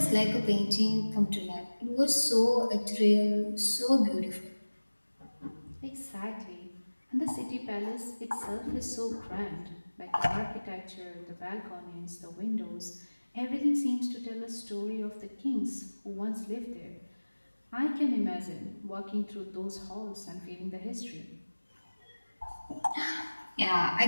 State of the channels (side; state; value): both; inverted; correlation -1.00